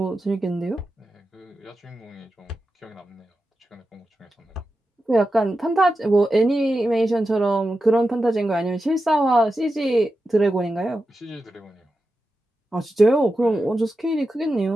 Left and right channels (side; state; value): both; normal; correlation 0.91